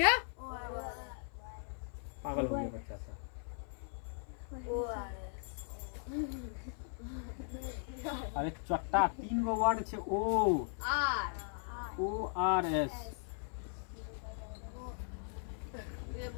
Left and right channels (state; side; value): silent; right; 52 dB below the other